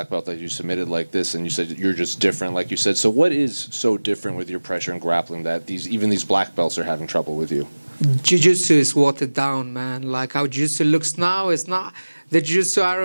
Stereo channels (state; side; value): inverted; both; correlation -1.00